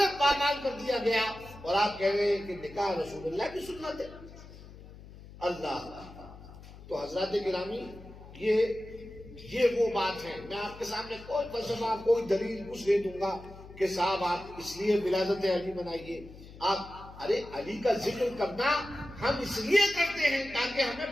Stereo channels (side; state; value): left; noise; hum, 17 dB below the sound